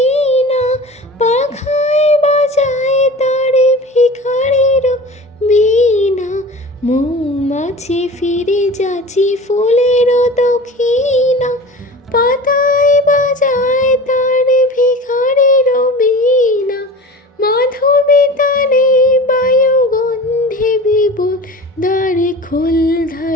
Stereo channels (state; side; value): normal; both; correlation 0.36